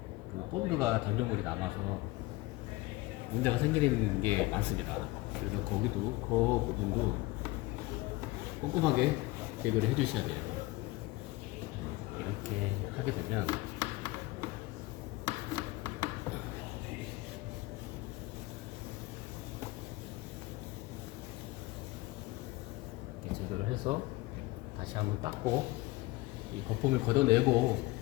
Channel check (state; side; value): quieter; right; 20.2 dB